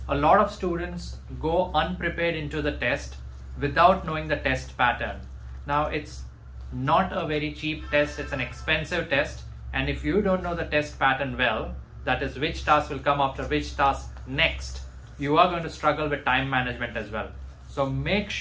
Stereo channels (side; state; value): both; identical; correlation 1.00